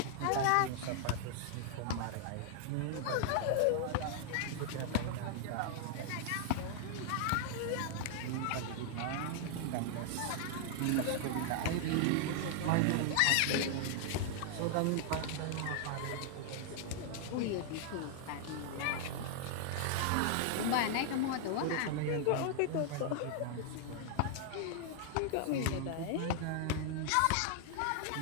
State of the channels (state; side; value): different; both; correlation 0.00